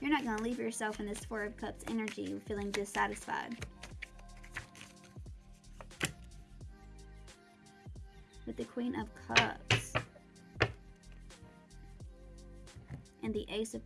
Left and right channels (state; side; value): identical; both; correlation 1.00